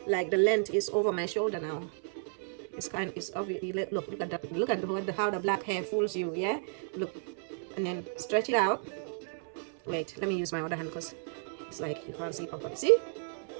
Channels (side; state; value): left; silent; 56 dB below the other